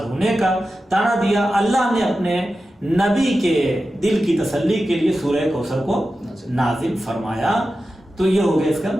ہونے کا طعنہ دیا، اللہ نے اپنے نبی کے دل کی تسلی کے لیے سورہ کوثر کو نازل فرمایا. تو یہ ہو گیا اس کا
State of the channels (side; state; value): both; normal; correlation 0.93